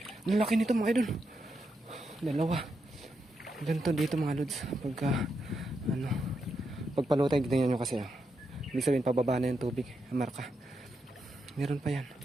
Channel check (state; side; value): normal; both; correlation 0.84